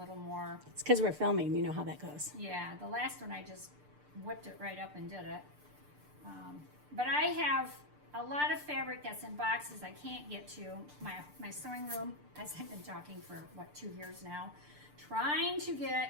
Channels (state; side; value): late; left; 6.7 ms